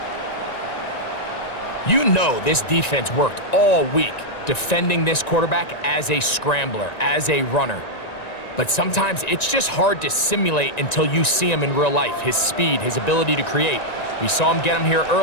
You know this defense worked all week defending this quarterback as a scrambler, as a runner. But sometimes it's just hard to simulate until you see him in real life, his speed, his ability to create. We saw him get him here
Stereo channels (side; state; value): right; late; 1.9 ms